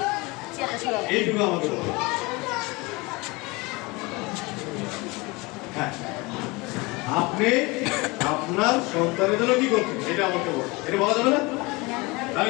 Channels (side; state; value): right; quieter; 24.7 dB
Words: এইটুকু আমাকে বলবেন। হ্যাঁ, আপনি আপনার সন্তানের জন্য কি করছেন এটা আমাকে বলুন। এটা বলা যাবে না? আমি